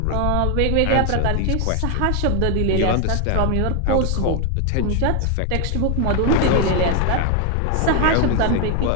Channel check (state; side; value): different; both; correlation 0.01